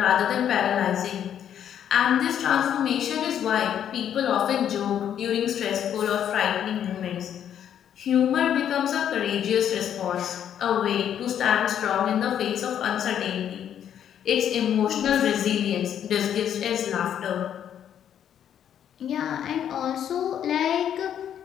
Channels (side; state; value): right; quieter; 9.6 dB